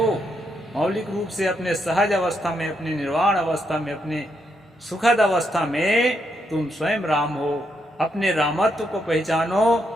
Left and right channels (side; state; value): both; normal; correlation 0.79